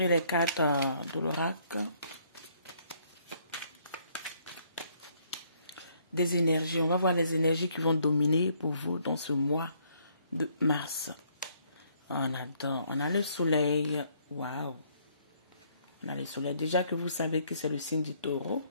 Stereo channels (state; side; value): inverted; both; correlation -0.67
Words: les cartes de l'oracle. Des énergies. On va voir les énergies qui vont dominer pour vous dans ce mois de mars. On adore. On a le soleil. Waouh. On a le soleil. Déjà que vous savez que c'est le signe du taureau.